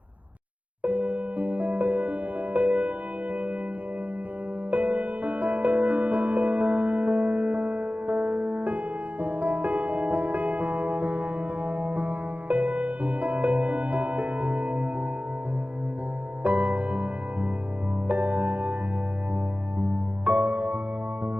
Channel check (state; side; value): late; left; 0.069 ms